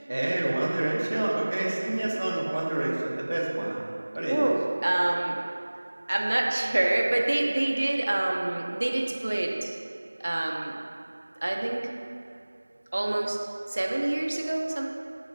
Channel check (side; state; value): both; inverted; correlation -1.00